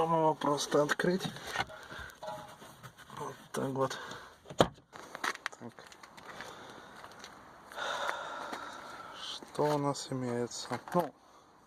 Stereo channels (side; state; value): both; identical; correlation 1.00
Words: его просто открыть. Вот так вот. Так. Что у нас имеется?